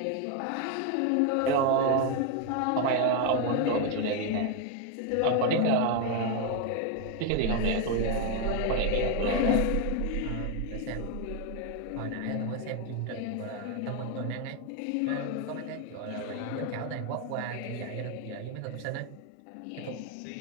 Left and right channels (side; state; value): both; different; correlation 0.01